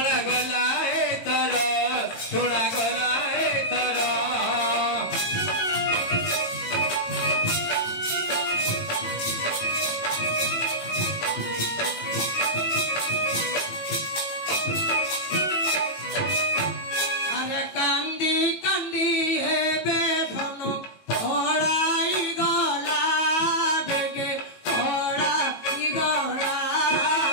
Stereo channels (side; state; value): right; late; 19 ms